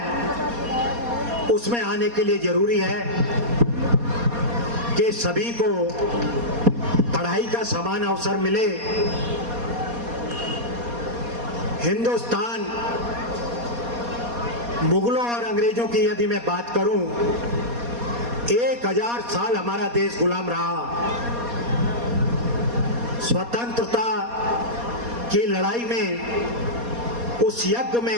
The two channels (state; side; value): late; left; 4.2 ms